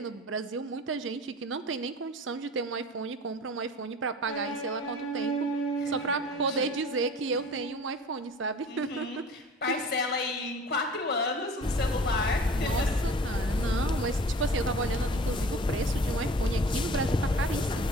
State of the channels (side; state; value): both; normal; correlation 0.44